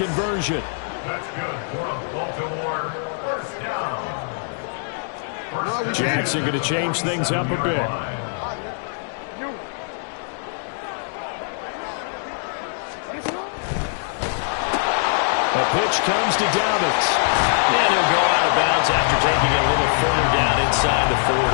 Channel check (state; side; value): silent; right; digital silence